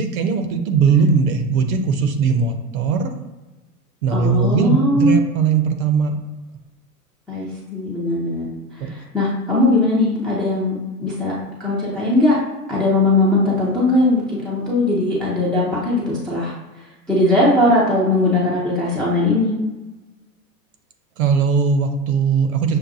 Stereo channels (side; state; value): both; normal; correlation 0.26